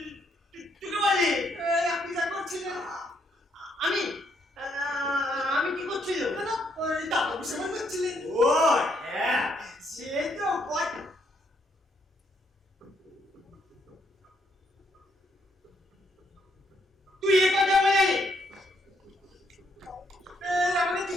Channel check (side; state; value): both; normal; correlation 0.73